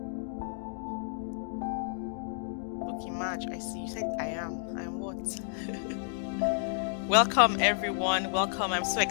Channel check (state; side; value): silent; right; digital silence